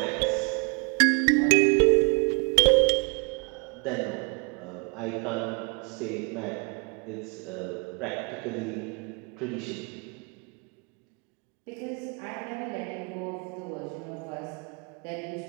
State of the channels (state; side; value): quieter; left; 35.8 dB